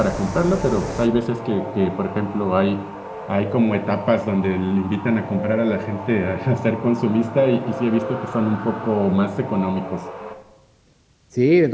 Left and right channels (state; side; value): identical; both; correlation 1.00